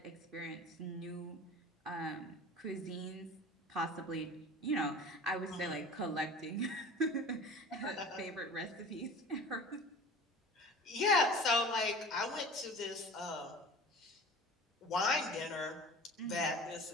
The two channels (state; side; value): normal; both; correlation 0.39